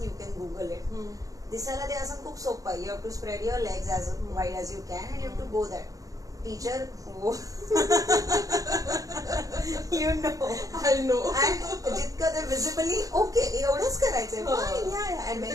you can Google it. दिसायला ते आसन खूप सोपं आहे. You have to spread your legs as wide as you can and you have to go that. Teacher you know I know. जितकं ते विजिबली ओके एवढंच करायचंय.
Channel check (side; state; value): left; late; 0.17 ms